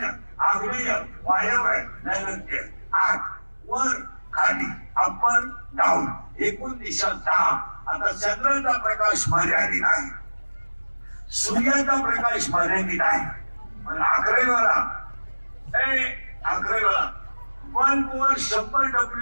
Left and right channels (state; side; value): inverted; both; correlation -1.00